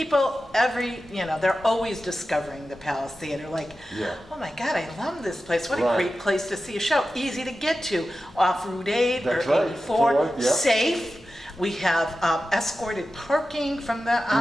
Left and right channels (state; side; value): normal; both; correlation 0.93